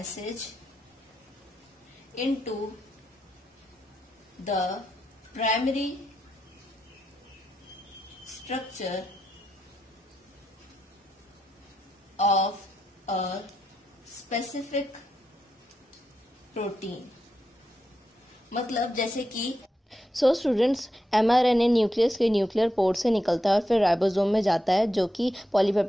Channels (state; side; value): normal; both; correlation 0.85